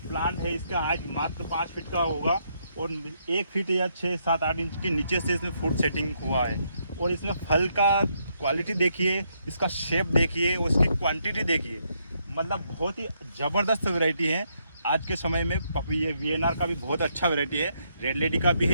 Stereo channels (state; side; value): inverted; both; correlation -0.76